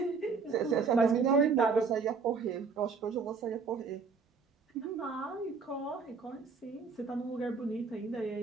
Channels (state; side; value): quieter; left; 5.0 dB